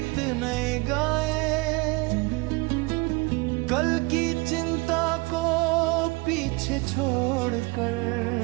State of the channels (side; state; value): left; quieter; 26.6 dB